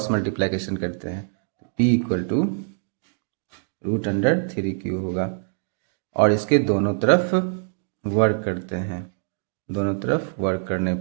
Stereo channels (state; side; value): silent; left; digital silence